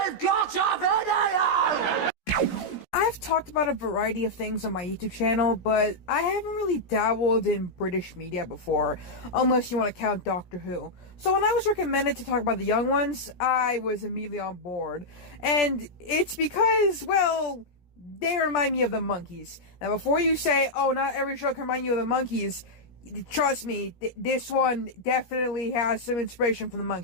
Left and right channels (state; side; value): late; right; 17 ms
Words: got a video! I've talked about a variety of things on my YouTube channel, but I haven't really dabbled in British media before, unless you want to count Doctor Who. So when I was recommended to talk about the young ones, I was immediately on board. And it's because, well, they remind me of the Monkees. Now before you say, oh, not every show can remind you of the Monkees, trust me, this one definitely has some inspiration from the